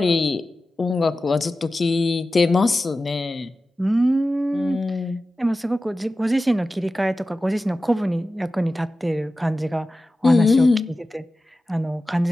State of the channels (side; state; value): both; normal; correlation 0.94